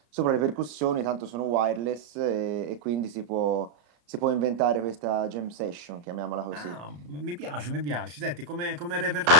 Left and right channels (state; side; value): late; left; 34 ms